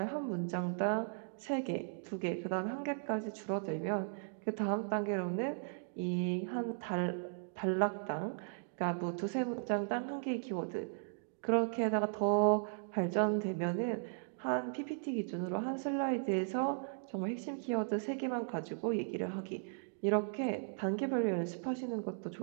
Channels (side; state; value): left; silent; digital silence